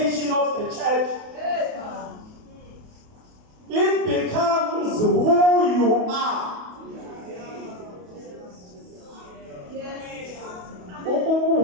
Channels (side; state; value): left; late; 28 ms